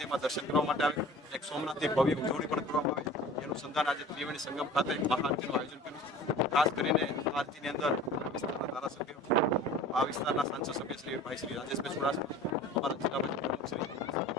દર્શન કરવા માટે આવે, એક સોમનાથની ભવ્ય ઉજવણી પણ કરવામાં આવે એનું સંધાન આજે ત્રિવેણી સંગમ ખાતે મહાઆરતીનું આયોજન કર્યું છે। ખાસ કરીને આરતીની અંદર વિસ્તારના ધારાસભ્યો, આ વિસ્તારના સાંસદ સભ્ય શ્રી ભાઈ શ્રી રાજેશભાઈ ચુડાસમા, અમારા જિલ્લા પંચાયત શ્રી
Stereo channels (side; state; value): both; normal; correlation 0.42